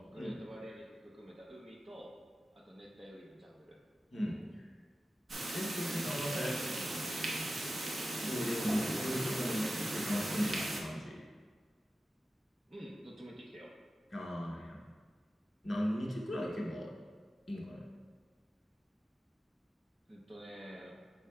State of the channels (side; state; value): both; normal; correlation 0.93